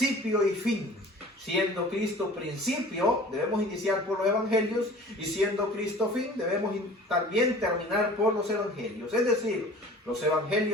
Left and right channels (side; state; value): both; normal; correlation 0.45